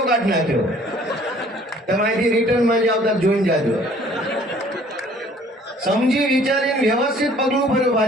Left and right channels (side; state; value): both; normal; correlation 0.55